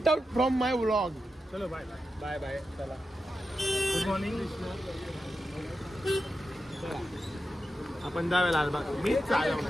from my vlog. चलो बाय बाय. चला गुड मॉर्निंग. आपण जाऊया लालबाग. मी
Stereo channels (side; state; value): both; normal; correlation 0.89